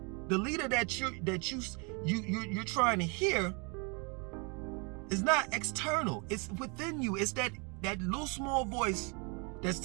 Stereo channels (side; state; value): left; quieter; 32.6 dB